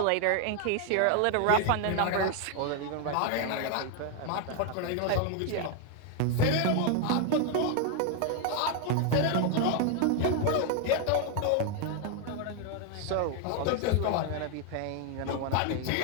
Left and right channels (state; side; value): different; both; correlation 0.01